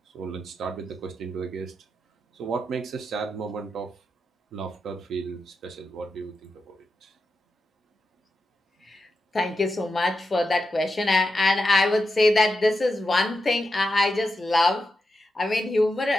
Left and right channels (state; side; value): normal; both; correlation 0.88